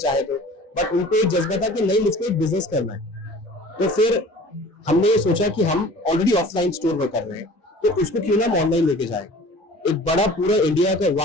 तो, बट उनको एक जज्बा था कि नहीं मुझको एक बिजनेस करना है। तो फिर हमने ये सोचा कि हम ऑलरेडी ऑफलाइन स्टोर में कर रहे हैं तो उसको क्यों ना हम ऑनलाइन लेके जाए। एक बड़ा पूरा इंडिया का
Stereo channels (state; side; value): normal; both; correlation 0.45